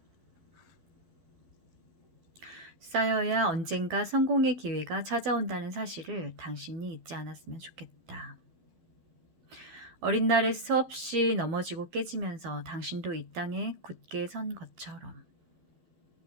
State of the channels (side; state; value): left; late; 12 ms